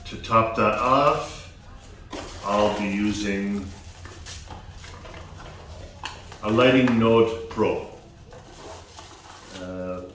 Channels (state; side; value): identical; both; correlation 1.00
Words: to top that off, I'll be using a Lighting Node Pro.